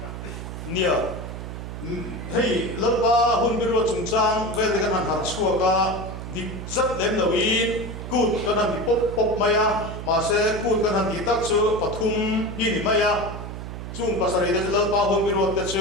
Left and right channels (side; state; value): right; noise; hum, 8 dB below the sound